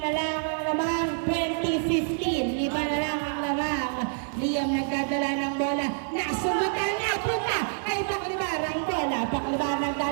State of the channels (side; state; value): left; silent; 57 dB below the other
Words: lang ang lamang. 20-15, 5 na lang ang lamang. Liam nagdadala ng bola. Nasumutan na, punta kay Paclibar ang bola. Paclibar